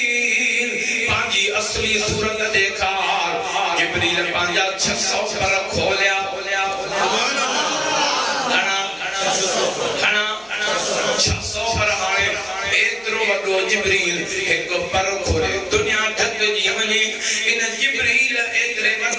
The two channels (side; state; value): both; identical; correlation 1.00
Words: पांजी असली सूरत देखा जिब्रील पांजा 600 पर खोलिया घना 600 पर हाने एतरो वडो जिब्रील एक पर खोले दुनिया ढक जी वने इन जिब्रील एतरे